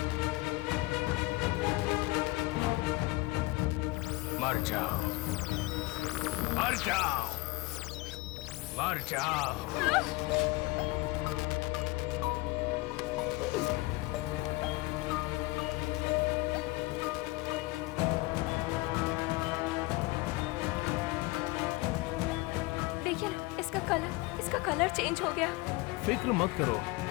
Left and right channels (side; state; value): right; quieter; 21.8 dB